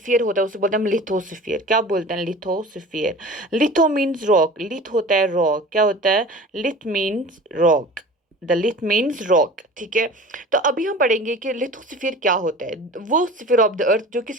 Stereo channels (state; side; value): normal; both; correlation 0.39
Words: होता है, उसे बोलते हैं हम लिथोस्फीयर। क्या बोलते हैं? Lithosphere. Litho means rock, lith होता है रॉक। क्या होता है? Lith means rock. The lith means rock. ठीक है, तो अभी हम पढ़ेंगे कि लिथोस्फीयर क्या होता है। वो स्फीयर ऑफ द अर्थ जो